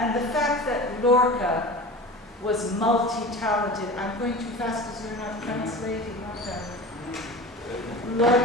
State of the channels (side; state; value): both; normal; correlation 0.34